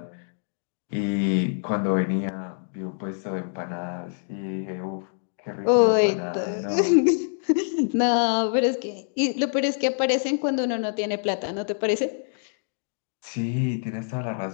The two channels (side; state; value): right; silent; digital silence